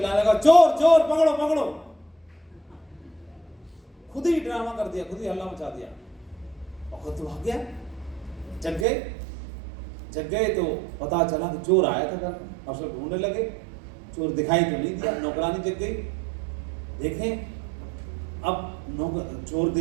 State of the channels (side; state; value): left; drops out; at 8.8 s